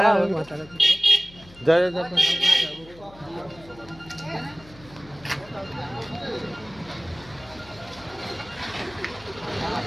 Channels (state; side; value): noise; left; hum, 22 dB below the sound